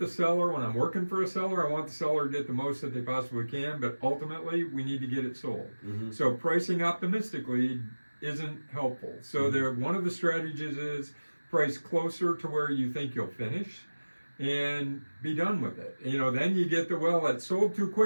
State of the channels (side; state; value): both; inverted; correlation -1.00